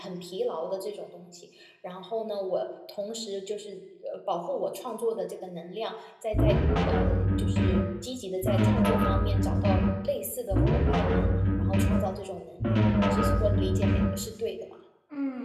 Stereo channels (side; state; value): both; identical; correlation 1.00